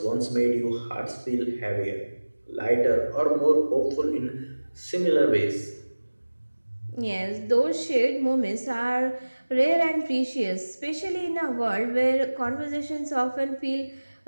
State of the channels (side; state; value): both; inverted; correlation -1.00